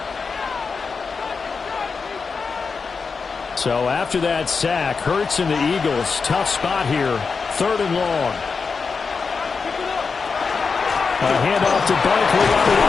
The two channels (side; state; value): right; quieter; 5.0 dB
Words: So after that sack, Hurts and the Eagles, tough spot here, 3rd and long. A handoff to Barkley on the